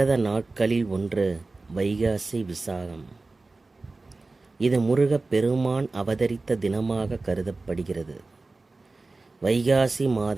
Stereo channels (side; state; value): left; quieter; 3.5 dB